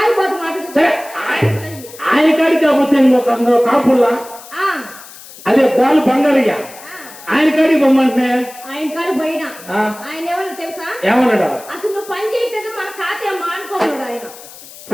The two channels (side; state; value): left; noise; hiss, 18 dB below the sound